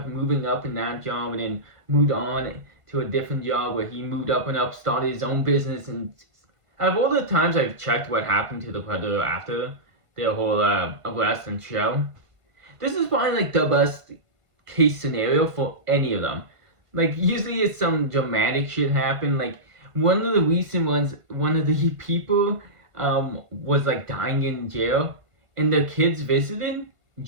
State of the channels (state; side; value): late; left; 1.5 ms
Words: moving up in that job, and then moved on to a different job where he moved up and up, started his own business. And out of all the times I've checked what happened to the Predator after their whole arrest and show, this is probably like the best case scenario for any of them. Like, usually it's some dramatic shit happen. Like, one of the recent ones, one of the people was like dying in jail, and the kids visited